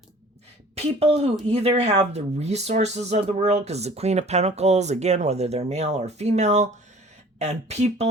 people who either have the resources of the world, because the Queen of Pentacles, again, whether they're male or female, and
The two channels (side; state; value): both; normal; correlation 0.49